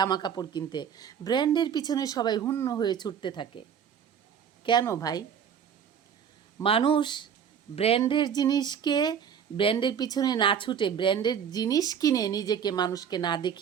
কাপড় কিনতে। ব্র্যান্ডের পিছনে সবাই হুন্য হয়ে ছুটতে থাকে। কেন ভাই? মানুষ ব্র্যান্ডের জিনিসকে, ব্র্যান্ডের পিছনে না ছুটে ব্র্যান্ডের জিনিস কিনে নিজেকে মানুষকে না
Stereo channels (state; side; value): quieter; left; 8.0 dB